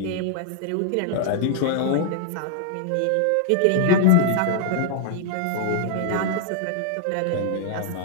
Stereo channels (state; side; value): different; both; correlation -0.01